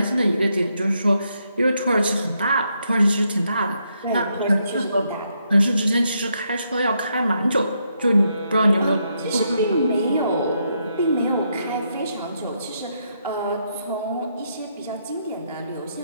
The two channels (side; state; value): both; inverted; correlation -0.78